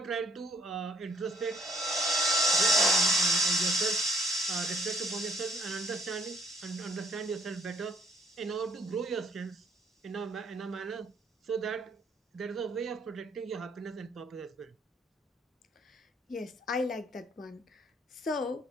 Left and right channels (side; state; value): both; normal; correlation 0.63